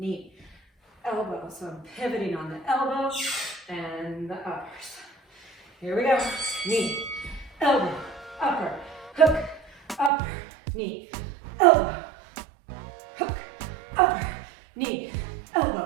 elbow. So I'm pivoting on the elbow and the uppers. Here we go. Knee, elbow, upper, hook, upper, knee, elbow, hook, upper, knee,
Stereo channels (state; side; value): drops out; left; at 10.1 s